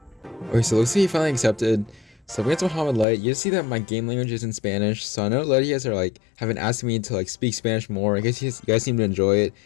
Okay, so looks like he finally accepted. So against Mohamed Light, you see that my game language is in Spanish. So I know a lot of you guys are like haven't asked me to like speak Spanish more. I guess you guys seem to enjoy it.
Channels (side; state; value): right; drops out; at 3.1 s